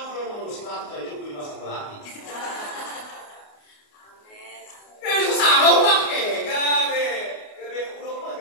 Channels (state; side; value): late; right; 28 ms